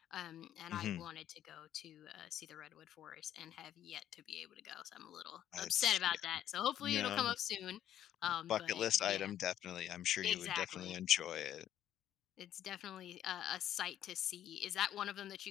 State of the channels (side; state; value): right; quieter; 11.3 dB